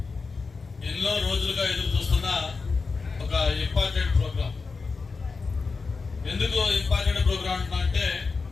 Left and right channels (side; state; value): right; quieter; 4.5 dB